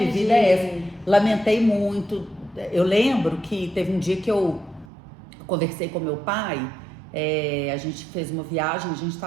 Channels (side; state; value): left; drops out; at 4.9 s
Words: vida é essa? Lamentei muito. Eu lembro que teve um dia que eu conversei com meu pai, a gente fez uma viagem, a gente